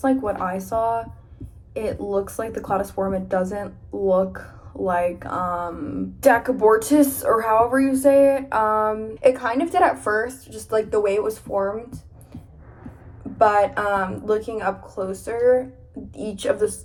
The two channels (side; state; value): both; identical; correlation 1.00